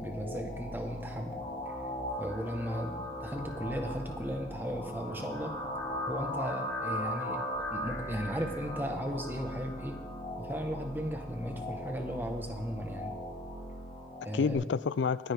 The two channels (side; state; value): both; normal; correlation 0.52